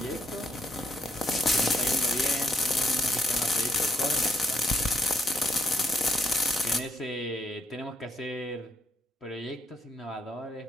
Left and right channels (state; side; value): normal; both; correlation 0.74